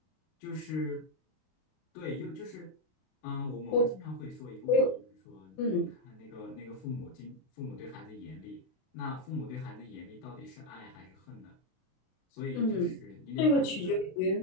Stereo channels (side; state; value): right; late; 32 ms